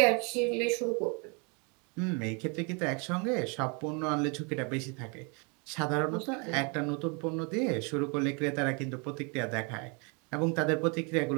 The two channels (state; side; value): quieter; left; 33.4 dB